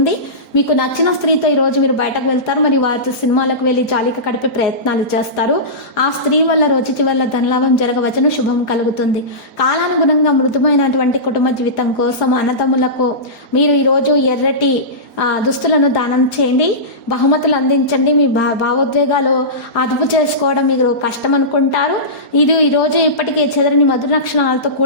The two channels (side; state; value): right; late; 4.3 ms